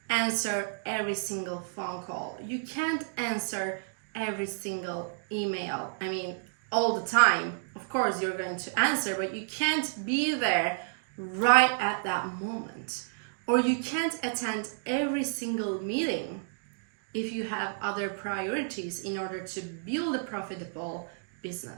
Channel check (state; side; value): silent; left; digital silence